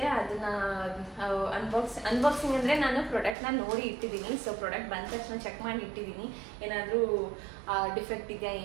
ಅದನ್ನ ಅನ್ಬಾಕ್ಸಿಂಗ್ ಅಂದರೆ ನಾನು ಪ್ರಾಡಕ್ಟ್ನ ನೋಡಿ ಇಟ್ಟಿದ್ದೀನಿ. ಸೊ ಪ್ರಾಡಕ್ಟ್ ಬಂದ ತಕ್ಷಣ ಚೆಕ್ ಮಾಡಿ ಇಟ್ಟಿದ್ದೀನಿ ಏನಾದರೂ ಡಿಫೆಕ್ಟ್ ಇದೆಯಾ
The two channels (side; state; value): left; drops out; at 3.4 s